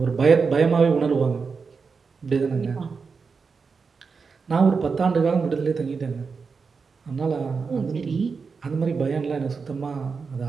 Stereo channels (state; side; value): quieter; left; 5.1 dB